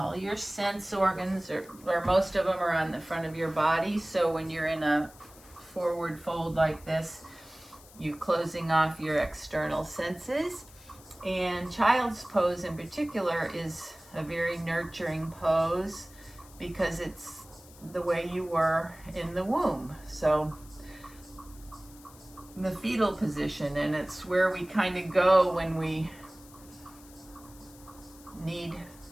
your sense organs, or most of them, are on the front of your body. So when you're in a forward fold like this, you're closing off your external senses. And child's pose in particular is a very nurturing pose because it's the way you were in the womb. So the fetal position, and it's where we kind of go when we need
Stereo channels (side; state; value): left; noise; hiss, 22 dB below the sound